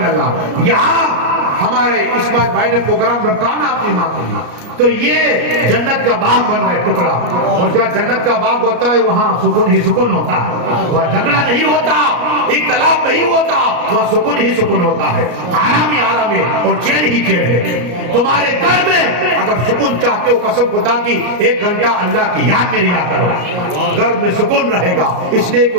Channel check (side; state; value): left; late; 33 ms